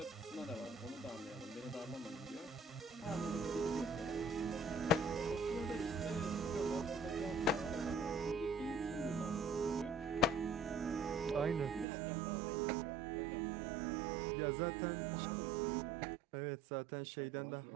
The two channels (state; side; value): drops out; left; at 11.9 s